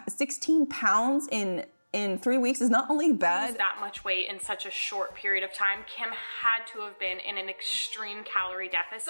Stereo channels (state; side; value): inverted; both; correlation -1.00